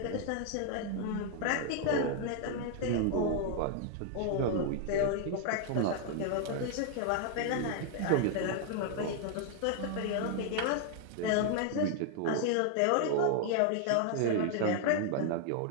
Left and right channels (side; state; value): both; different; correlation 0.00